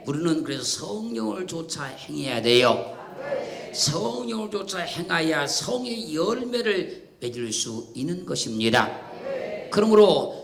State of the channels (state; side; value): identical; both; correlation 1.00